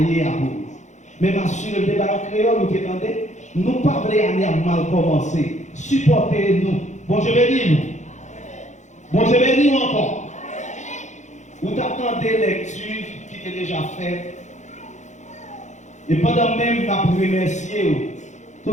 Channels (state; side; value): late; right; 0.34 ms